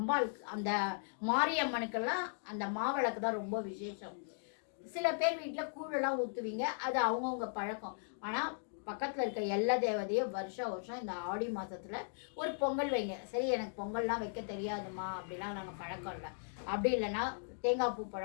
அந்த மாரியம்மனுக்கெல்லாம் அந்த மாவிளக்கு தான் ரொம்ப விசேஷம். சில பேர் வீட்டில் கூழெல்லாம் ஊற்றுவீங்க, அது அவங்கவுங்க பழக்கம். ஆனால் பக்கத்தில் இருக்க எல்லா தேவதையும் வருஷம் இந்த ஆடி மாதத்தில் ஒரு பொங்கல் வைங்க. சரி, எனக்கு பொங்கல்லாம் வைக்க தெரியாதுமா அப்படிலாம் நாங்கள் பழக்கம் இல்லை. அப்படி இல்லைன்னா தேங்காய் பூ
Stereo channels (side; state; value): right; silent; digital silence